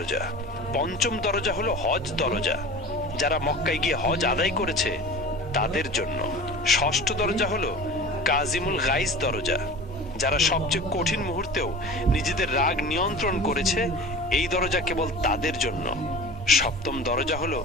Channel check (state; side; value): normal; both; correlation 0.37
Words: পঞ্চম দরজা হলো হজ দরজা, যারা মক্কায় গিয়ে হজ আদায় করেছে তাদের জন্য। ষষ্ঠ দরজা হলো কাজিমুল গাইজ দরজা, যারা সবচেয়ে কঠিন মুহূর্তেও নিজেদের রাগ নিয়ন্ত্রণ করেছে এই দরজা কেবল তাদের জন্য। সপ্তম দরজা হলো